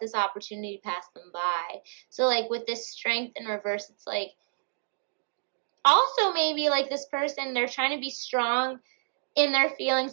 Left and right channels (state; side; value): silent; left; digital silence